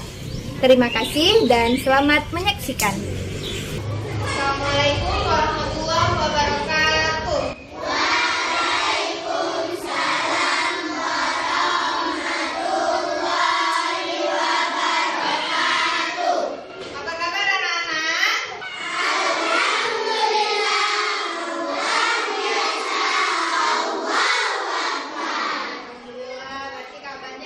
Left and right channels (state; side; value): identical; both; correlation 1.00